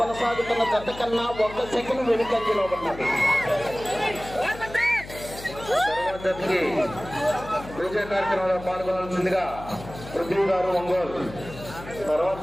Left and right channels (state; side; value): noise; left; hum, 14 dB below the sound